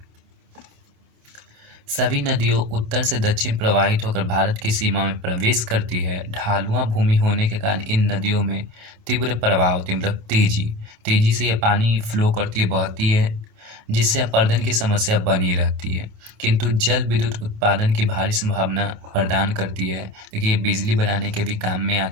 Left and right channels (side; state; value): left; late; 27 ms